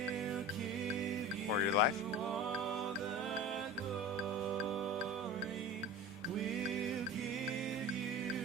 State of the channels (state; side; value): normal; both; correlation 0.33